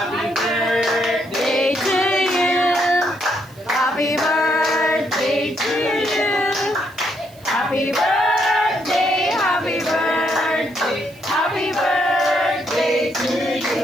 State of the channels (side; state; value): right; noise; hiss, 26 dB below the sound